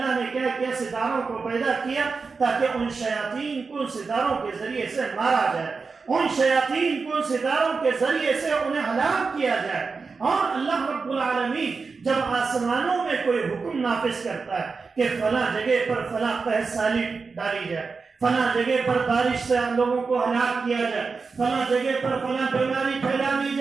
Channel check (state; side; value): quieter; left; 4.7 dB